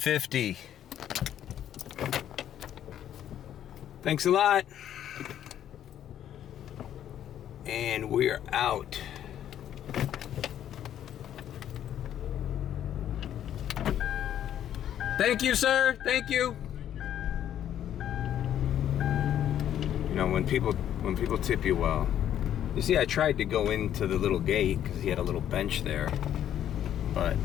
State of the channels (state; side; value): quieter; right; 10.7 dB